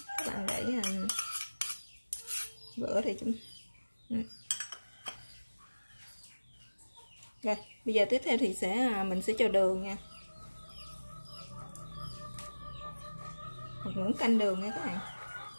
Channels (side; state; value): both; inverted; correlation -1.00